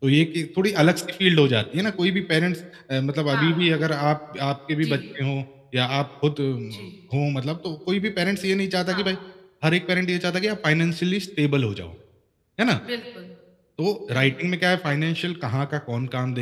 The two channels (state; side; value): identical; both; correlation 1.00